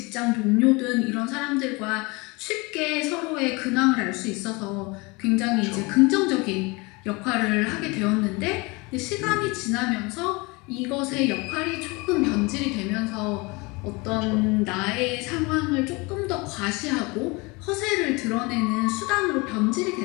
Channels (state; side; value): quieter; right; 26.2 dB